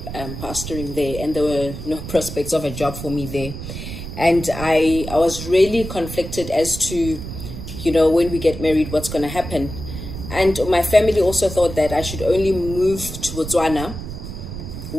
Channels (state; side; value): noise; right; rumble, 9 dB below the sound